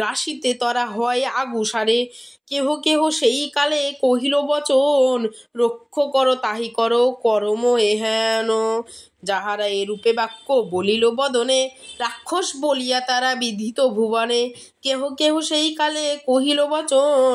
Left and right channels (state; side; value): identical; both; correlation 1.00